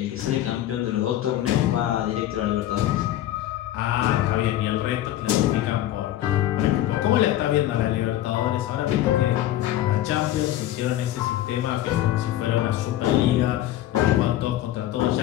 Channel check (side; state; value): right; quieter; 13.5 dB